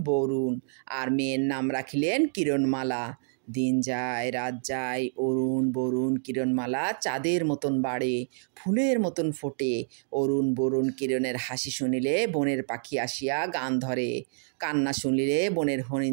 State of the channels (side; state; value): left; silent; digital silence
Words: বরুণ, আর মেয়ের নাম রাখিলেন কিরণমালা। দিন যায় রাত যায়, অরুণ বরুণ কিরণমালা চাঁদের মতন বাড়ে, ফুলের মতন ফোটে। অরুণ বরুণ কিরণের হাসি শুনিলে বনের পাখি আসিয়া গান ধরে, কান্না শুনিলে বনের